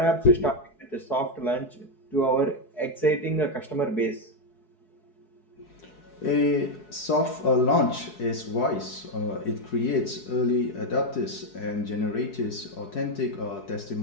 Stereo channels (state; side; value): late; right; 4.7 ms